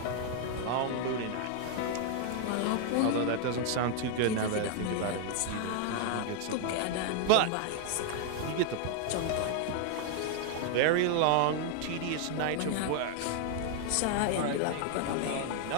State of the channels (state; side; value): different; both; correlation 0.00